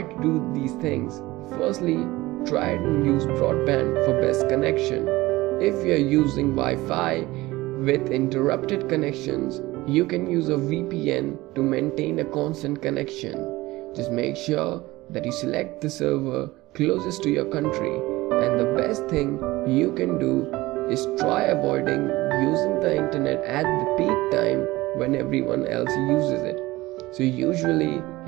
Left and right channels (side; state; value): left; quieter; 19.3 dB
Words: to do these things. Firstly, try and use broadband for best connection. If you are using Wi-Fi with interrupted connections, you can use a VPN to maintain a constant connection. Just make sure that you select the server closest to your country, and the best thing you can do is try avoiding using the internet at the peak time when everyone else uses it. So usually